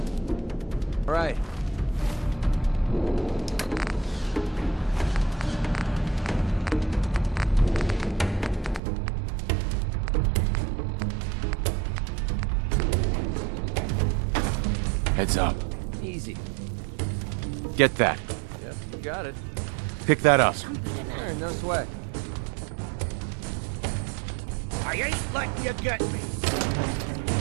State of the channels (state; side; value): drops out; left; at 8.8 s